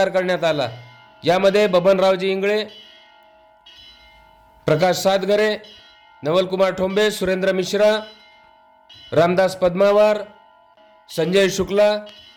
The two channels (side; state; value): both; identical; correlation 1.00